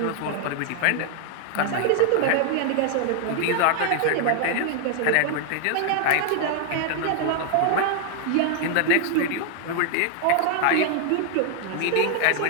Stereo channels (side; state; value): both; different; correlation 0.00